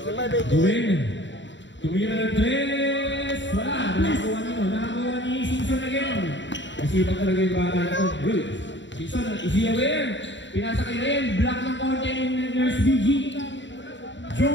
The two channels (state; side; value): late; right; 0.53 ms